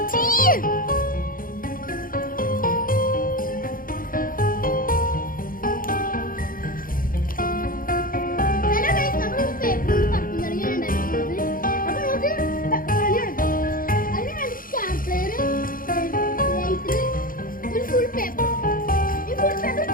ഫുൾ പേപ്പർ ഈ ഫുൾ പേപ്പർ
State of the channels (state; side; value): late; right; 0.41 ms